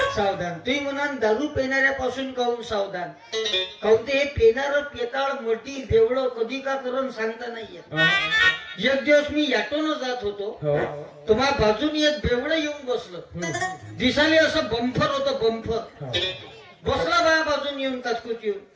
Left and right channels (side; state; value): both; identical; correlation 1.00